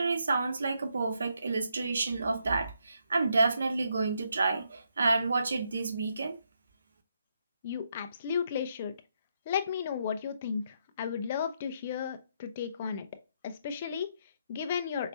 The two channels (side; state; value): both; inverted; correlation -0.78